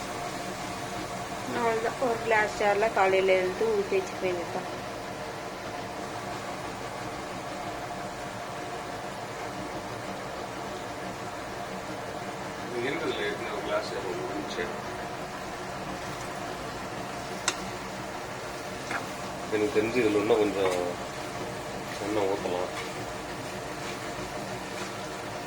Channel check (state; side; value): identical; both; correlation 1.00